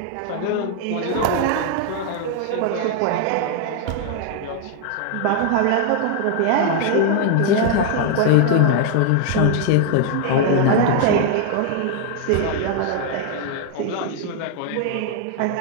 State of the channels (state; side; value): different; both; correlation 0.00